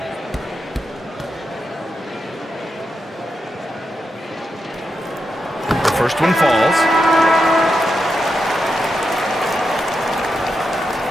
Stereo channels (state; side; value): normal; both; correlation 0.86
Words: First one falls.